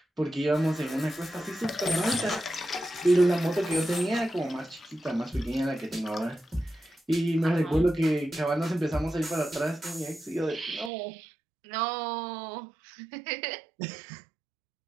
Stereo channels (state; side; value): drops out; left; at 10.9 s